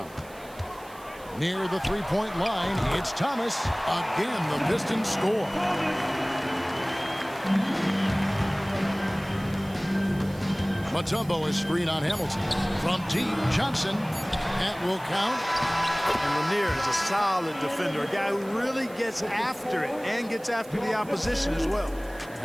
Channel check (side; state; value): right; noise; hiss, 22 dB below the sound